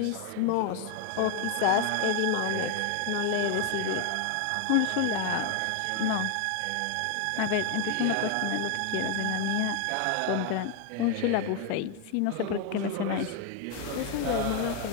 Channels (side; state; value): both; different; correlation 0.01